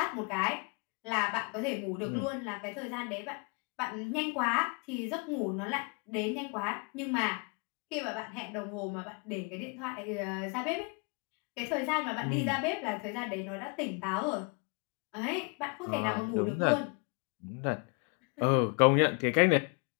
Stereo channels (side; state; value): right; quieter; 34.5 dB